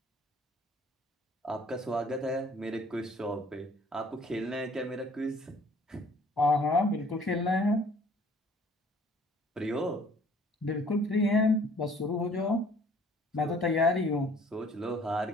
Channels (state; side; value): normal; both; correlation 0.56